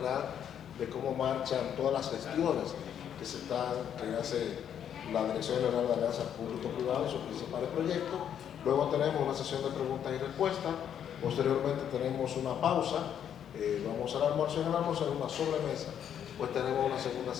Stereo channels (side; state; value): right; quieter; 9.2 dB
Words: de cómo marchan todas las gestiones que hace la Dirección General de Alianza Público-Privado y sus principales proyectos. Luego tenemos una sesión de preguntas y respuestas. Posteriormente tenemos una pausa. Vamos al almuerzo. En el almuerzo, en una sobremesa, pues tenemos una segunda